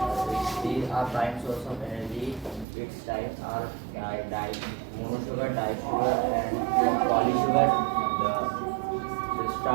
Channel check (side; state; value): left; drops out; at 2.7 s